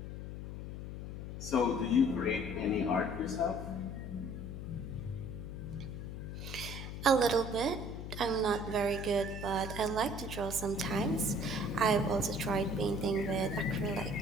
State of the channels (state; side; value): noise; left; hum, 7 dB below the sound